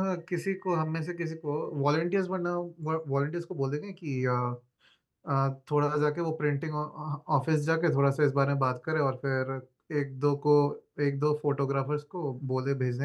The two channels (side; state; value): both; identical; correlation 1.00